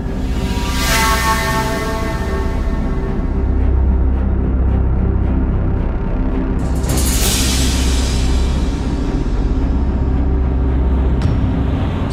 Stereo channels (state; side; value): identical; both; correlation 1.00